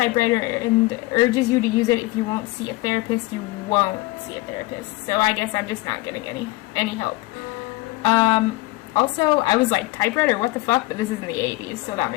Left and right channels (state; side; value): quieter; right; 20.1 dB